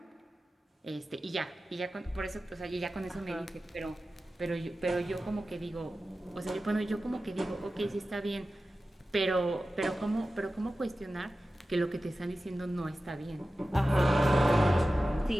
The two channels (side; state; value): both; normal; correlation 0.94